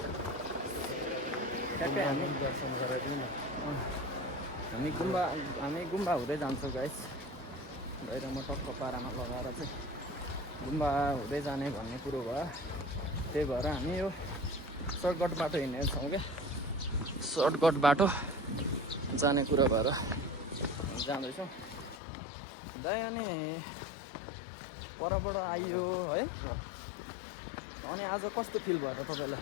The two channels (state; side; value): drops out; right; at 22.0 s